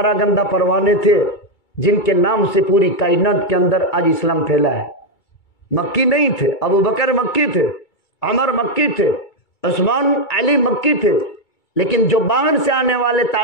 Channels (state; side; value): late; right; 2.3 ms